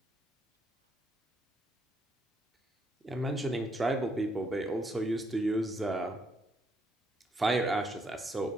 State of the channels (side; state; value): both; normal; correlation 0.73